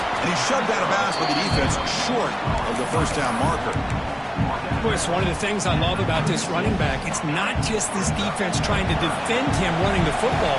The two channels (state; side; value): identical; both; correlation 1.00